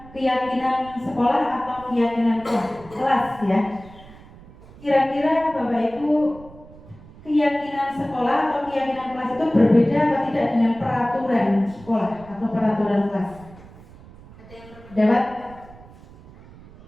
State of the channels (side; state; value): right; noise; rumble, 21 dB below the sound